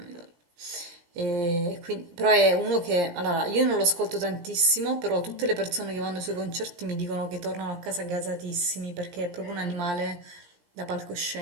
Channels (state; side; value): late; left; 17 ms